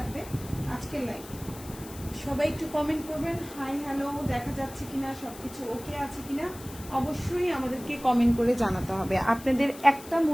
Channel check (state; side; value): noise; left; hiss, 17 dB below the sound